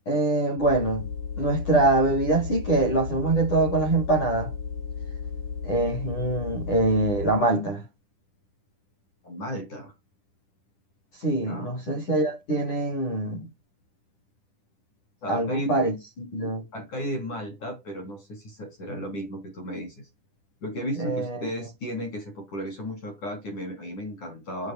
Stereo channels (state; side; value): late; right; 10 ms